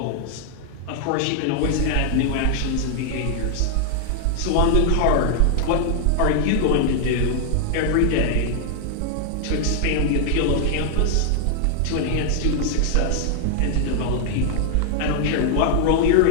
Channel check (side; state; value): both; different; correlation 0.00